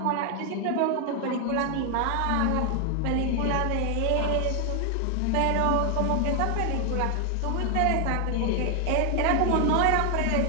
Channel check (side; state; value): both; different; correlation 0.00